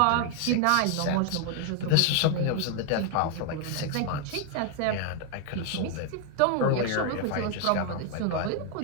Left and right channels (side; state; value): both; different; correlation 0.01